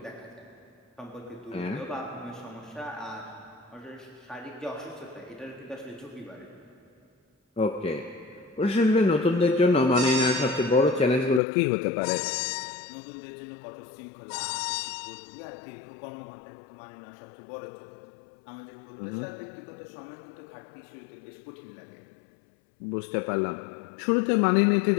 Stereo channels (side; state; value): right; drops out; at 11.4 s